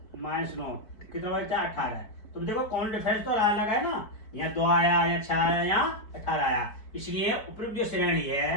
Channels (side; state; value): right; late; 4.7 ms